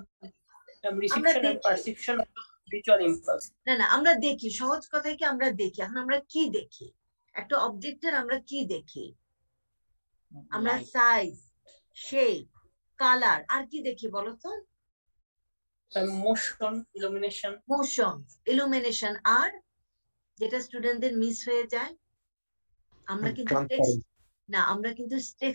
reception and দেখি। perception of visual impulse. না আমরা দেখি, সহজ কথায় কি আমরা দেখি। এখন আমরা কি দেখি? একটা অবজেক্টের আমরা কি দেখি? আমরা Light. সাইজ, শেপ, কালার, আর কি দেখি বলো তো? Motion, illumination. মোশন, ইলুমিনেশন, আর যেটা স্টুডেন্টদের মিস হয়ে যায়, আমরা কিন্তু আমরা কিন্তু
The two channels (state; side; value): inverted; both; correlation -1.00